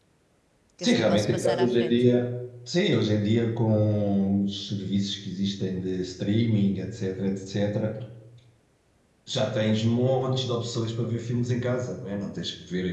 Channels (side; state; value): both; identical; correlation 1.00